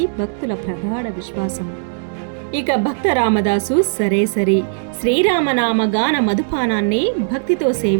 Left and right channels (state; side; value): silent; left; digital silence